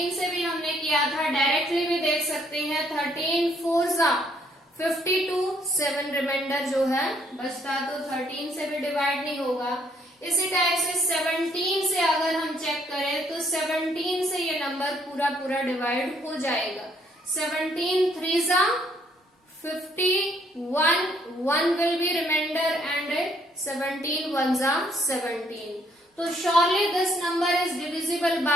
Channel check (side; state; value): both; normal; correlation 0.67